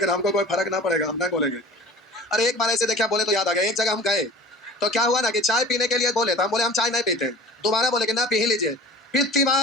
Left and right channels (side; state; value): both; normal; correlation 0.40